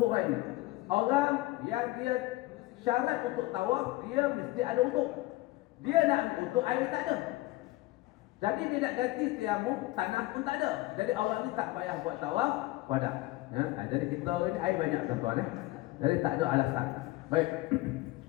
Orang yang dia syarat untuk tawaf, dia mesti ada untuk. Dia nak untuk air tak ada. Jadi dia nak ganti tayamum, tanah pun tak ada. Jadi orang ni tak payah buat tawaf wada. Jadi kita ni air banyak tuan-tuan. Jadi tak ada alasan. Baik.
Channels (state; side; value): quieter; right; 19.0 dB